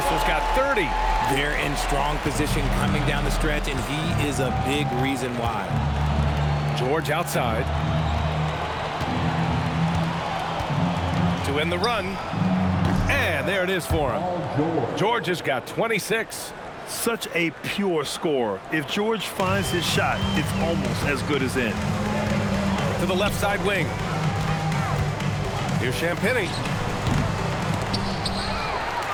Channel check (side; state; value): both; identical; correlation 1.00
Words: got 30. They're in strong position coming down the stretch, and he is a big reason why. George outside. To end the run. And there it is for him. George has got 26. Such a pure scorer. If George finds his shot, it's almost as good as in. To the left side wing. Here's Champagny.